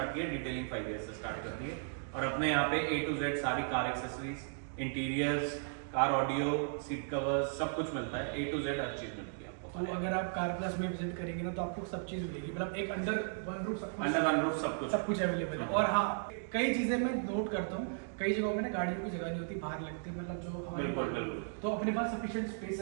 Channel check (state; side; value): silent; left; digital silence